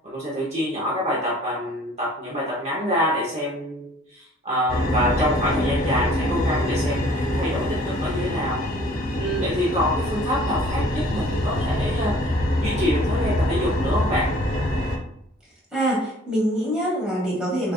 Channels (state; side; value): normal; both; correlation 0.53